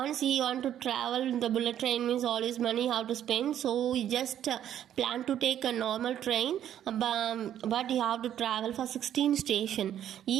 he want to travel, the bullet train means all his money how to spend, so he just planned to take a normal train, but he have to travel for 16 stations.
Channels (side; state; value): left; quieter; 10.6 dB